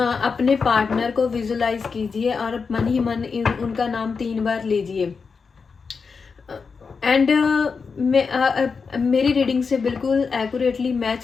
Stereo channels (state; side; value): quieter; right; 5.2 dB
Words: अपने पार्टनर को विजुलाइज कीजिए और मन ही मन उनका नाम 3 बार लीजिए। एंड मेरी रीडिंग से बिल्कुल एक्यूरेटली